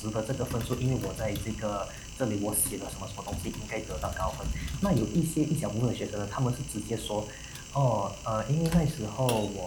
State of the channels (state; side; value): identical; both; correlation 1.00